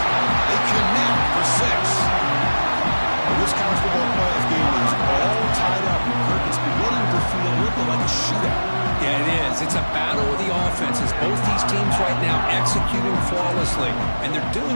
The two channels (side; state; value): both; inverted; correlation -1.00